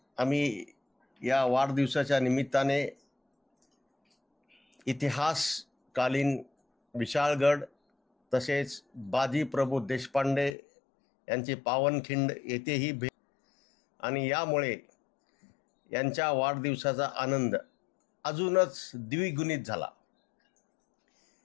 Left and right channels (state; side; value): drops out; right; at 10.6 s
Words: आम्ही या वाढदिवसाच्या निमित्ताने इतिहासकालीन विशाळगड तसेच बाजी प्रभू देशपांडे यांची पावनखिंड येथेही भेट आणि यामुळे यांच्या वाढदिवसाचा आनंद अजूनच द्विगुणित झाला.